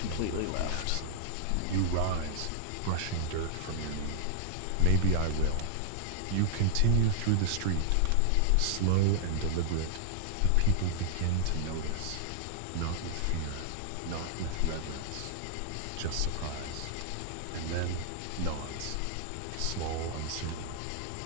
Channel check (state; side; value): different; both; correlation -0.01